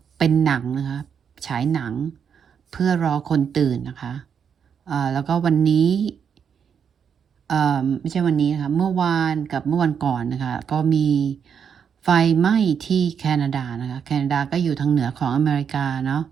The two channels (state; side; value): quieter; left; 7.4 dB